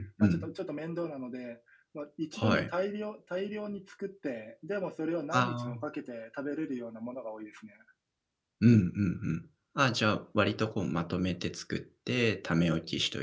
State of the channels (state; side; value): identical; both; correlation 1.00